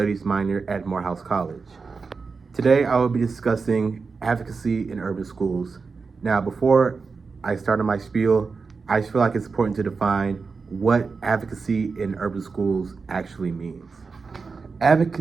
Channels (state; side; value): quieter; left; 4.7 dB